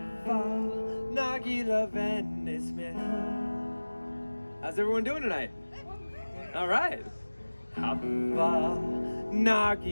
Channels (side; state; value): both; inverted; correlation -1.00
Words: Nagila Venismecha. How's everyone doing tonight? All right. Hava,